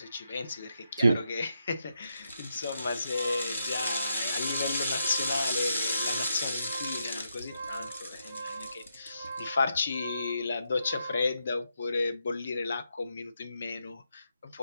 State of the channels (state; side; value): inverted; both; correlation -0.82